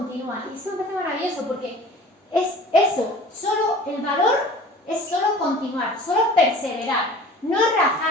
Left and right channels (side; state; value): both; normal; correlation 0.44